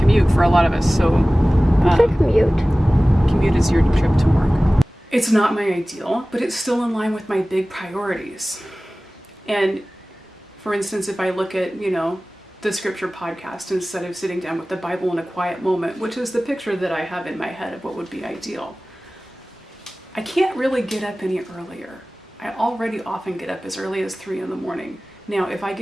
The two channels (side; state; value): both; normal; correlation 0.98